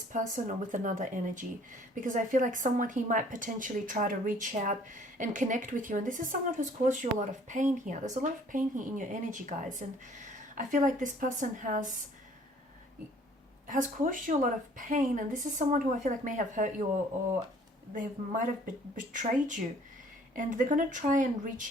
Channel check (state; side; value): normal; both; correlation 0.56